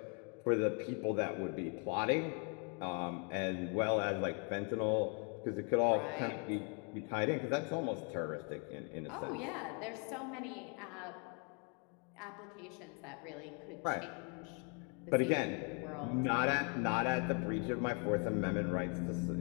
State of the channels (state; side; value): quieter; right; 37.7 dB